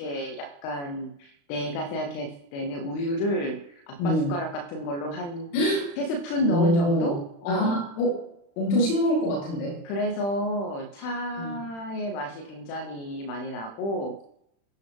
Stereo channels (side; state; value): right; late; 35 ms